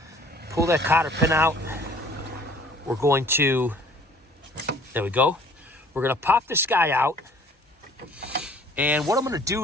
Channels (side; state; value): both; normal; correlation 0.53